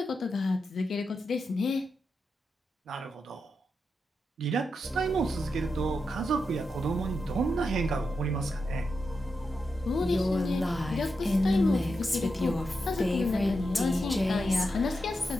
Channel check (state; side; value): normal; both; correlation 0.87